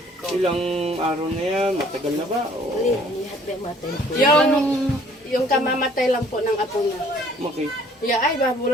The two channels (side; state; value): both; normal; correlation 0.57